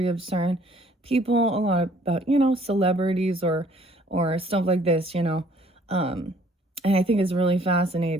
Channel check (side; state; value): both; normal; correlation 0.59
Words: of certain people, a lot about, celebrities or stuff like this, and I think it's really